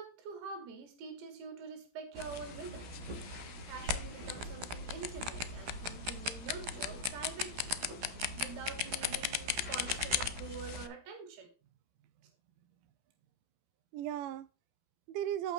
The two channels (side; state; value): left; late; 17 ms